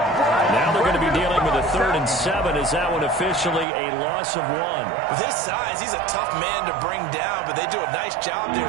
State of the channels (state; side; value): drops out; left; at 3.7 s